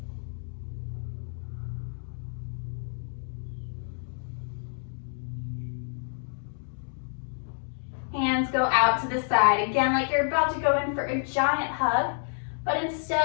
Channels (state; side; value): silent; right; digital silence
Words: Hands go out to the side. Again, like you're about to go in for a giant hug, but